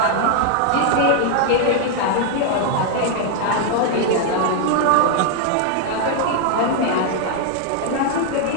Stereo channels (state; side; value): different; both; correlation 0.00